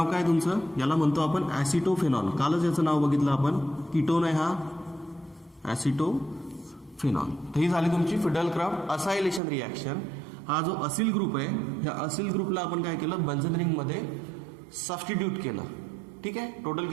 काय तुमचं, याला म्हणतो आपण ॲसिटोफेनॉल. कालच याचं नाव बघितलं आपण, कीटोन आहे हा ॲसिटोफेनॉल. तर ही झाली तुमची फिडेल-क्राफ्ट असायलेशन रिॲक्शन. हा जो असिल ग्रुप आहे ह्या असिल ग्रुपला आपण काय केलं, बेन्झीन रिंगमध्ये सबस्टिट्यूट केलं. ठीक आहे. टोटल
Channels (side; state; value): left; drops out; at 9.4 s